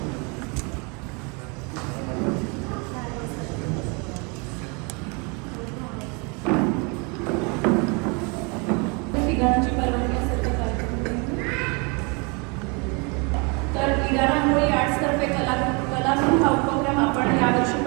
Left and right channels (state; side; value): quieter; left; 31.7 dB